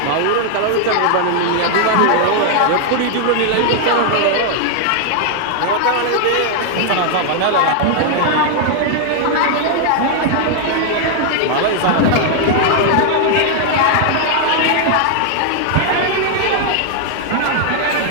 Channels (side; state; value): both; different; correlation 0.00